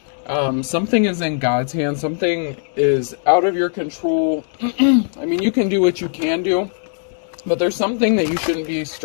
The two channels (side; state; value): right; silent; digital silence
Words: Something is in God's hands. Something is out of your control. I mean, you can do what you can do, but there's something that you shouldn't be